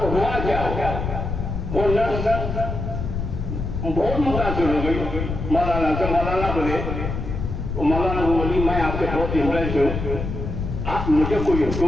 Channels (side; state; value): left; noise; rumble, 4 dB below the sound